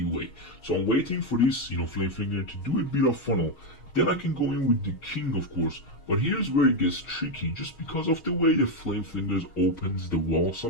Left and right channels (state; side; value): late; right; 6.6 ms